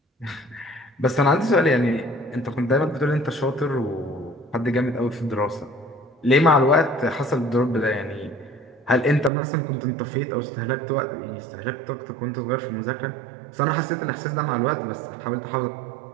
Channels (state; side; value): drops out; left; at 9.3 s